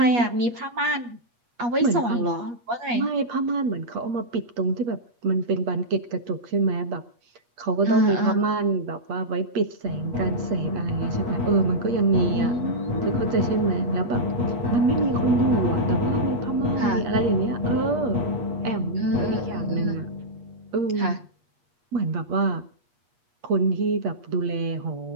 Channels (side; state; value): left; late; 8.4 ms